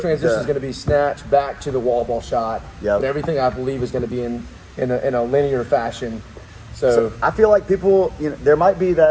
is going to be snatch back to the wall ball shot. Yep. And everything I believe is going to be in a linear fashion. So I feel like people, there might be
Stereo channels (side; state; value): both; identical; correlation 1.00